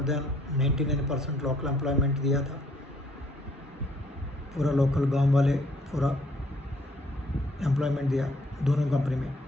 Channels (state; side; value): normal; both; correlation 0.64